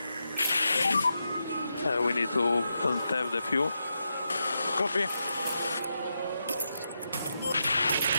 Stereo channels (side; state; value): both; inverted; correlation -0.86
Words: We need to have the fuel. Copy.